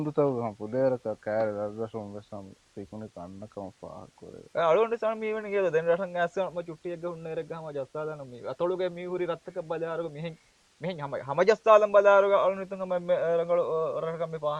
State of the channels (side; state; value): both; identical; correlation 1.00